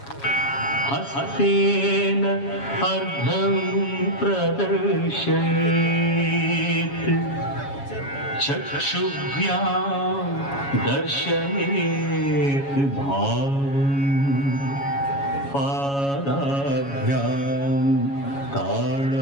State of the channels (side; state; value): right; late; 7.2 ms